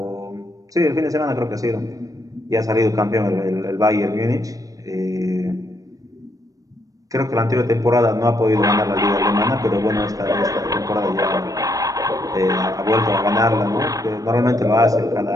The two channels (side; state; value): left; late; 0.17 ms